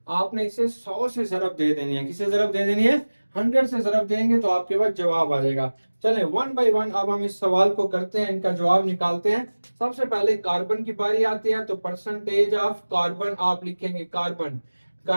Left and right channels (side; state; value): both; inverted; correlation -1.00